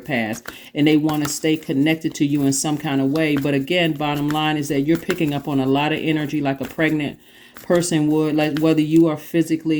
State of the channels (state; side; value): identical; both; correlation 1.00